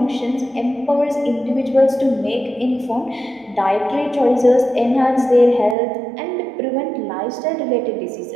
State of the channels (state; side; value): drops out; left; at 5.8 s